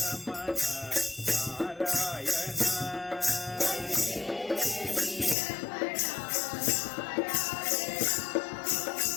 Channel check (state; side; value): drops out; right; at 5.4 s